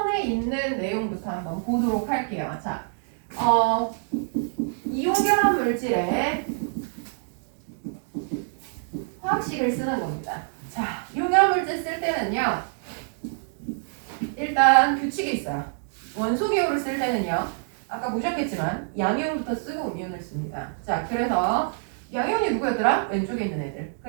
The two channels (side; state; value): left; silent; digital silence